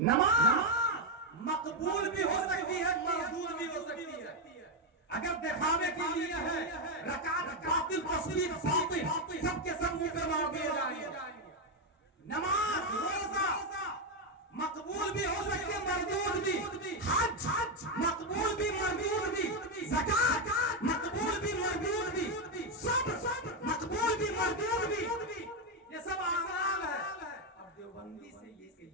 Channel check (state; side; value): normal; both; correlation 0.05